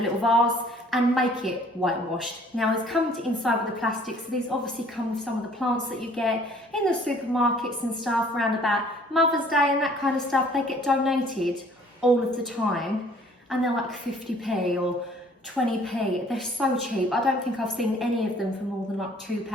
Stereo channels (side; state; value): both; normal; correlation 0.56